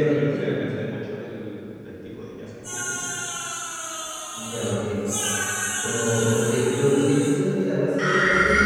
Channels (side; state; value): both; identical; correlation 1.00